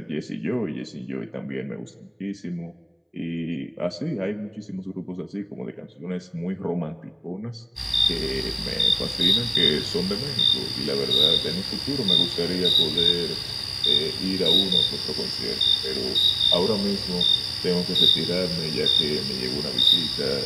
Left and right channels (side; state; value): both; identical; correlation 1.00